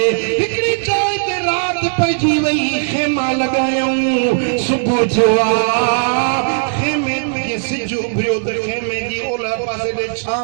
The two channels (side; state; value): left; silent; digital silence